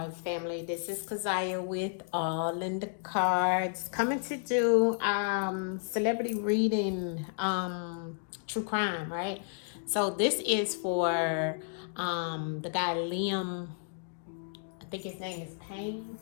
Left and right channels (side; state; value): right; silent; digital silence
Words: family. This is Kazaya with All in the Cards, coming to do celebrity reading, true crime, right? So this is for the guy Liam. I think his name is Payne.